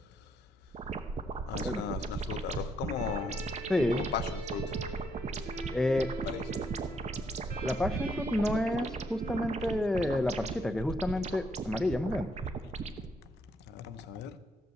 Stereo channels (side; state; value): both; normal; correlation 0.74